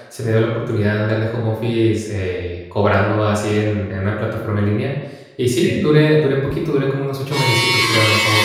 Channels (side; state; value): both; identical; correlation 1.00